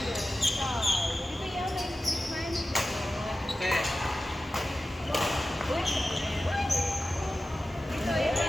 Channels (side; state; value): both; normal; correlation 0.94